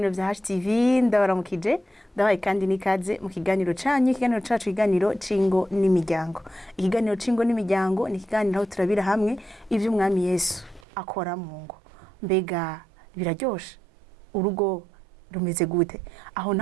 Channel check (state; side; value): drops out; left; at 10.9 s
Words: vya HTV ndabaramukije ndabaye kandi nikaze mu kiganiro canyu ikiganiro cacu ikiganiro cingo n'imiryango. Ikiganiro cingo n'imiryango ni ikiganiro aho turabira hamwe ivyo umwami Yesu akora mu ngo. Mbega biraryoshe urugo rumeze gute? Aho